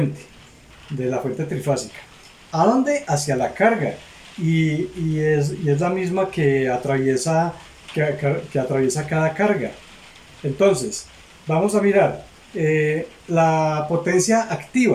de la fuente trifásica. ¿A dónde? Hacia la carga. Y es la misma que atraviesa cada carga. Entonces, vamos a mirar la potencia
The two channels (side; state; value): both; identical; correlation 1.00